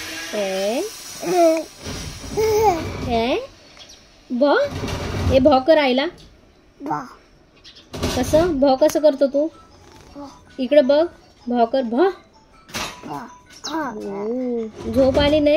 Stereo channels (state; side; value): identical; both; correlation 1.00